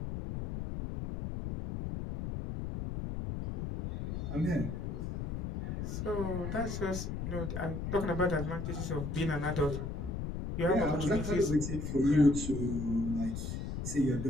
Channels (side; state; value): left; noise; rumble, 4 dB below the sound